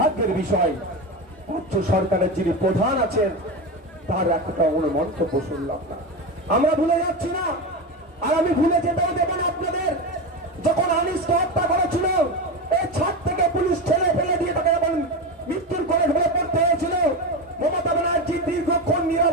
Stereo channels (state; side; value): normal; both; correlation 0.19